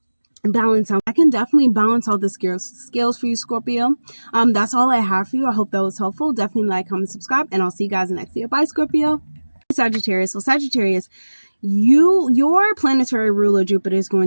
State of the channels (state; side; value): inverted; both; correlation -1.00